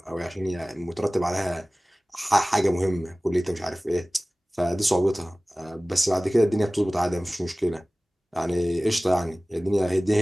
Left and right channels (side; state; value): both; normal; correlation 0.98